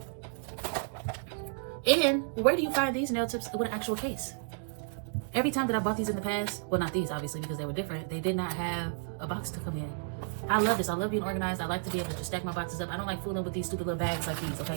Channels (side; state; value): left; silent; digital silence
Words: And where do you find these nail tips with an actual case? Every time that I bought these in the past, well, not these obviously because they were different, they did not have a box to come in. I love this. I love being organized. I like to be able to just stack my boxes up. I don't like fooling with these stupid little bags like these, okay?